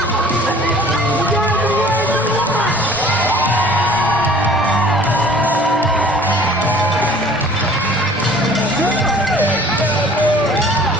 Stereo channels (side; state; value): both; normal; correlation 0.51